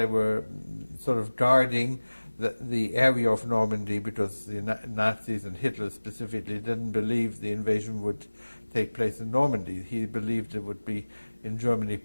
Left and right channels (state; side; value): inverted; both; correlation -1.00